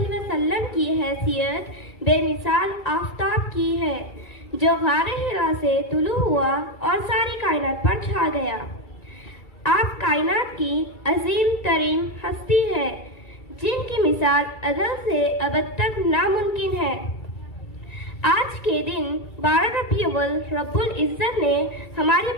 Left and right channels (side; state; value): right; late; 2.3 ms